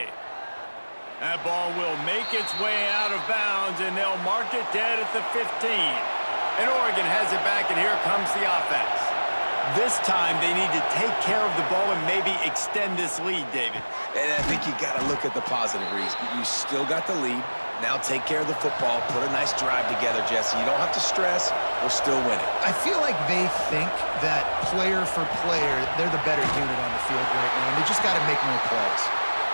That ball will make its way out of bounds, and they'll mark it dead at the 15. And Oregon has it back, and here comes the offense. This time, they need to take care of the ball and maybe extend this lead, David. And I think you got to look at the positive, Reese. You still got the lead. Now take care of the football. Put a nice drive together, Jesse. You don't have to stress. We're still winning. I feel like they think that player for player, they're the better unit on the field right now, and they just got to make more plays.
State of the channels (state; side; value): inverted; both; correlation -1.00